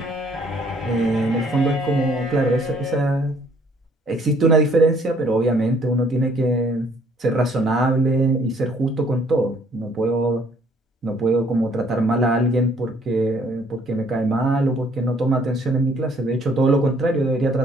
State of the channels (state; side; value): normal; both; correlation 0.62